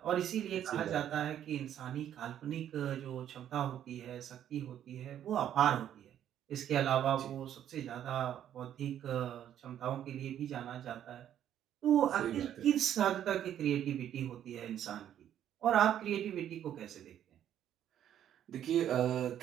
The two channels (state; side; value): quieter; left; 10.5 dB